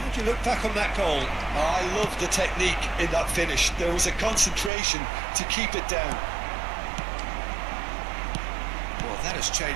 do you look back on that goal? I love the technique in that finish. There was a concentration to keep it down. Well, that has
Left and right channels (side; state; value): left; drops out; at 4.7 s